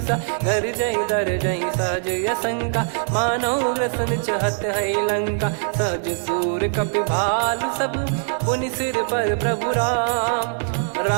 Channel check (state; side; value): silent; left; digital silence